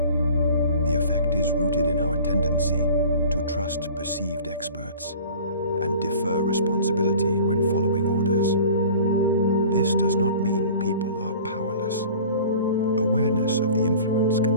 The effect is rooted in our tendency to trust perceived experts and defer responsibility when following orders. This does not mean people are powerless. Awareness of the influence can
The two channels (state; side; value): inverted; both; correlation -0.44